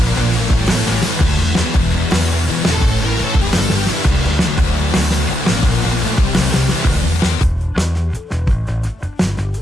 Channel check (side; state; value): both; normal; correlation 0.82